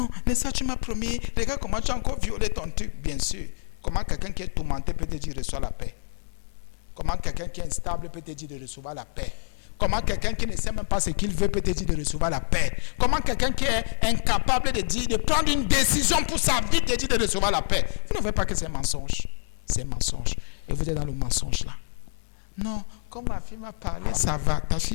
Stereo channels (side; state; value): right; silent; 60 dB below the other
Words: mais ça, tu m'as promis. Regarde comment tu as encore violé ton truc, bien sûr. Comment quelqu'un qui est tourmenté peut te dire de recevoir la paix? Comment quelqu'un qui est instable peut te dire de recevoir la paix? Comment quelqu'un qui ne sait même pas ce qu'il veut peut te dire de recevoir la paix? Comment quelqu'un qui est incapable de prendre une décision pour sa vie te dit de recevoir la paix? Vous ne voyez pas que c'est un mensonge. C'est un mensonge. Et vous êtes dans le mensonge là. Non, comme ma fille m'a parlé, ça va. Ta